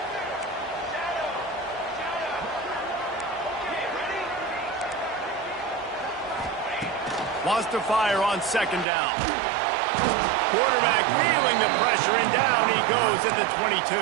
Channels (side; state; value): left; drops out; at 8.8 s